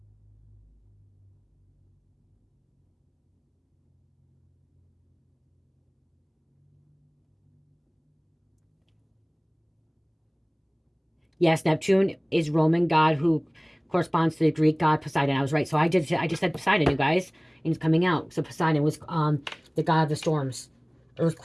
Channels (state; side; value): identical; both; correlation 1.00